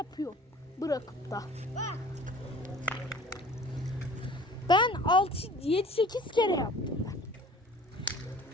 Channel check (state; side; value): normal; both; correlation 0.47